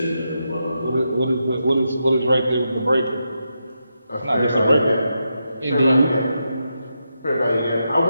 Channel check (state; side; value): inverted; both; correlation -0.85